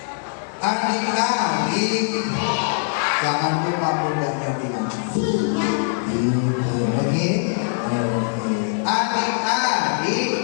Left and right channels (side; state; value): right; silent; digital silence